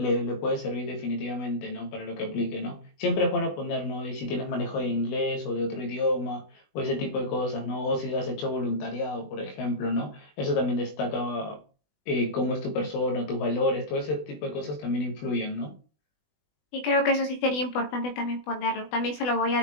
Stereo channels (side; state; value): right; late; 20 ms